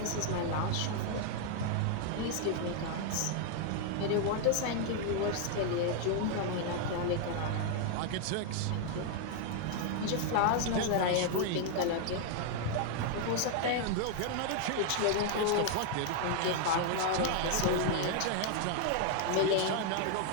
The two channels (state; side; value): different; both; correlation 0.00